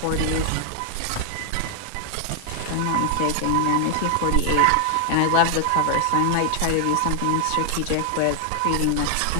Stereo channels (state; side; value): different; both; correlation 0.00